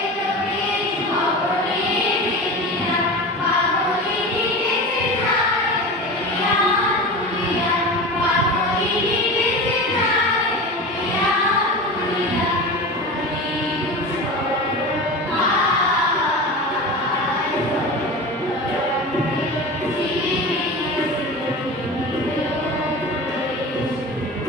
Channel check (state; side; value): normal; both; correlation 0.30